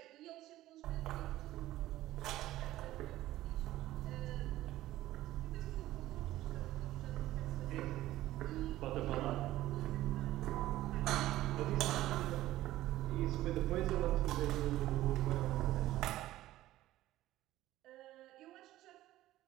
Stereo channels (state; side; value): quieter; left; 15.3 dB